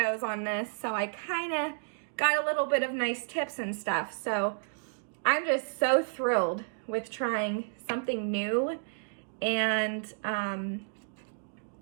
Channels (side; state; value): left; silent; digital silence